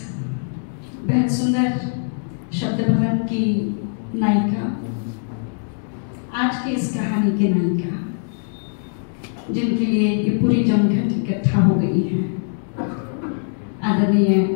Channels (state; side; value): silent; right; digital silence